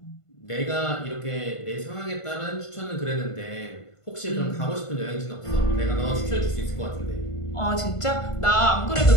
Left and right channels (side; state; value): right; late; 1.5 ms